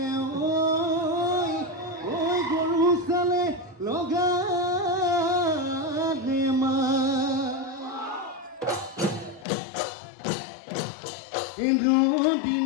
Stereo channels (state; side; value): drops out; right; at 9.5 s